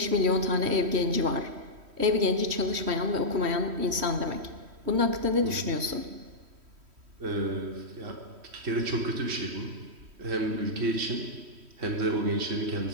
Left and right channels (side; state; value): left; late; 3.1 ms